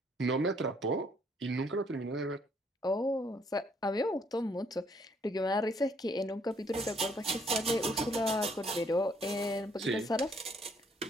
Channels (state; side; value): normal; both; correlation 0.67